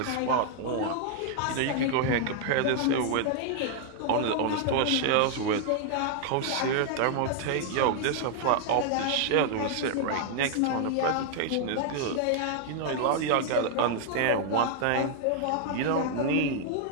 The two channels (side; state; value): both; different; correlation 0.00